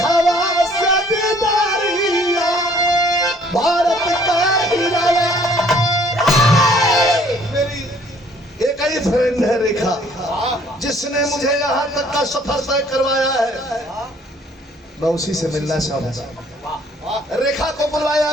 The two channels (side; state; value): both; normal; correlation 0.59